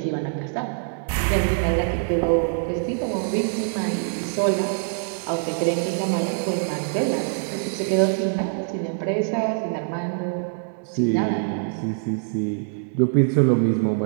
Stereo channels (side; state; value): left; silent; 60 dB below the other